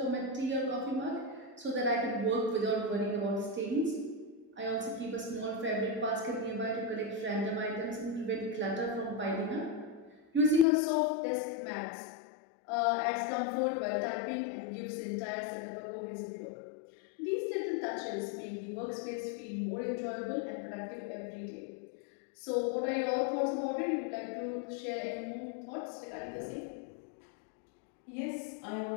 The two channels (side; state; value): right; drops out; at 10.7 s